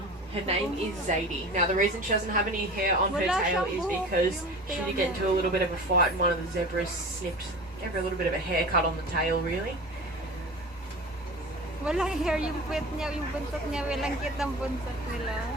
name is Zadie. Now, the reason she doesn't have any hair on her tail is because she did get into a little bit of a fight and one of the zebras gave her a little bit of a haircut on the tail, really. Walang hair yung puwet niya, yung buntot niya. Walang cute ang buntot nila.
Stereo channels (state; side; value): normal; both; correlation 0.35